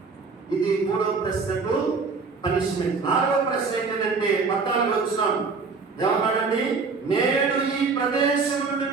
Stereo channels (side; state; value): left; quieter; 4.6 dB